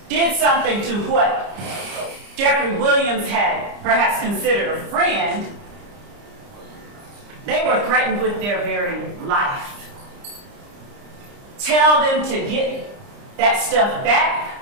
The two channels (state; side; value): late; left; 30 ms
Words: did something to what Jeffrey Williams had perhaps considered a friend, they were threatened with their very life. Tell them to get that stuff back